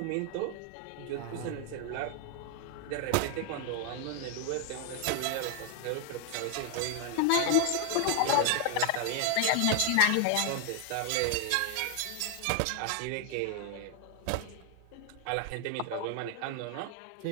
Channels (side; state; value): both; different; correlation 0.00